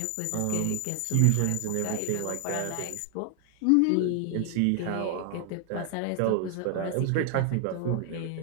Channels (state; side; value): different; both; correlation 0.00